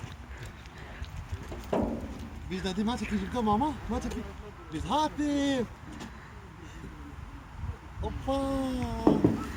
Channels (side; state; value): both; identical; correlation 1.00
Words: Biz de ma çekeceğiz mama. Ma çekeceğiz. Biz hadi. Hoppa.